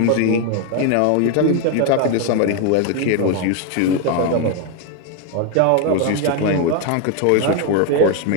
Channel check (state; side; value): different; both; correlation 0.01